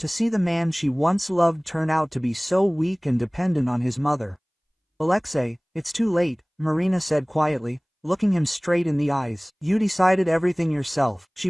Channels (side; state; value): both; identical; correlation 1.00